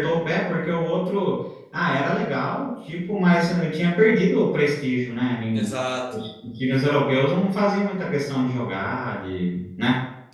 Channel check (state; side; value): identical; both; correlation 1.00